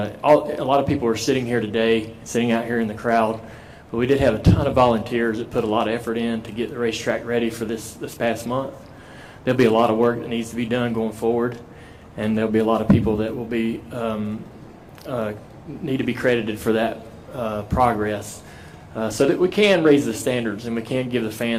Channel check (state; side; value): identical; both; correlation 1.00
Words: lot of people are sitting here today, sitting out here in the crowd, but we did have a ton of volunteers that put a lot of effort in to get the racetrack ready for this past month. There'll be a lot of work that needs to be done going forward, and there'll be a lot of people that will be need to be credited for that progress, so that we can raise the standards and we can give the